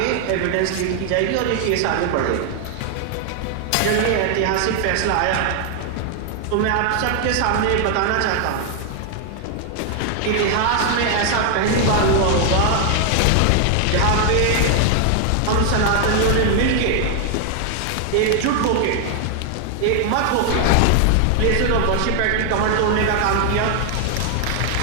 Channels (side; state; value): both; different; correlation 0.00